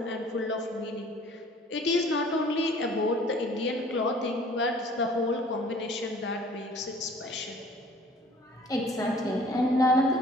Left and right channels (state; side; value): normal; both; correlation 0.52